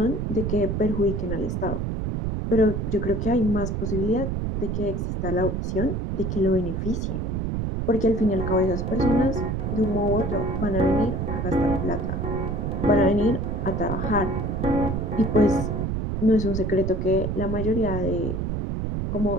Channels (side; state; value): right; noise; rumble, 1 dB below the sound